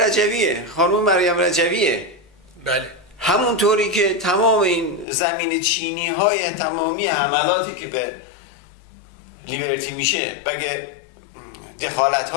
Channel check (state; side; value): drops out; right; at 5.1 s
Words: خانم مریم رجویه. بله. همونطوری که تمام این زمین چینی های تمامی حملاتی که به لیبرتی میشه بگه دخالت